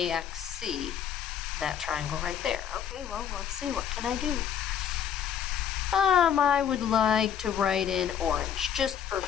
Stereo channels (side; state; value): right; quieter; 8.9 dB